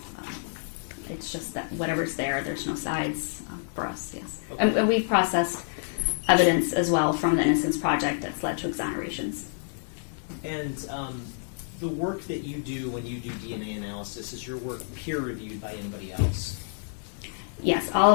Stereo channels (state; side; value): silent; right; digital silence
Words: It's just that whatever's there, there's no sides for us, yes. Okay. And we've processed evidence as well from the Innocence Project that's led to exonerations. And the work that you do when you do DNA analysis, is your work peer-reviewed by anybody else? Yes, all